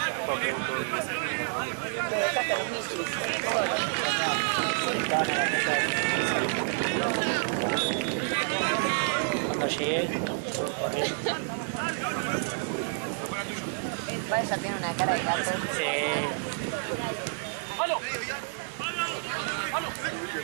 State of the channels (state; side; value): silent; left; digital silence